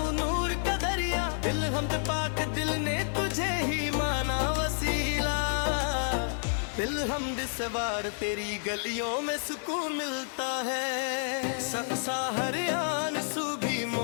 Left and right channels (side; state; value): right; silent; 58 dB below the other